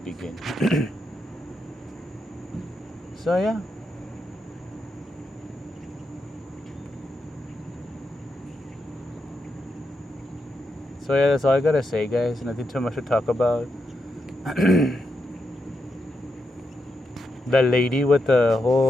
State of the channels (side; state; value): both; normal; correlation 0.84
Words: So yeah. So yeah, that's all I gotta say, guys. Nothing too much to talk about. The lady with the